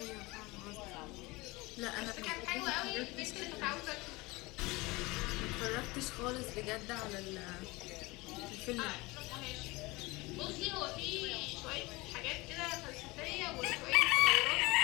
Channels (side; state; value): right; quieter; 22.9 dB